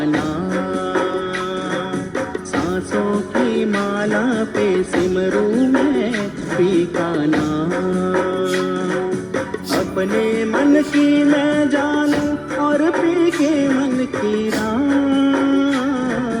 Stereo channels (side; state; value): both; identical; correlation 1.00